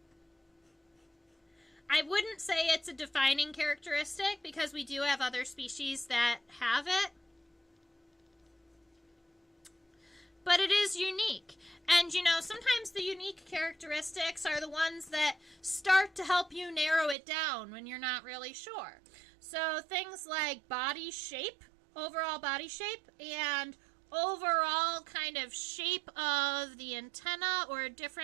I wouldn't say it's a defining characteristic because we do have other species that have it. But it is unique. And, you know, sometimes the unique characteristics are the ones that start to help you narrow it down when you're not really sure. So things like body shape, overall body shape, and overall kind of shape of the antenna or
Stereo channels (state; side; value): drops out; left; at 17.2 s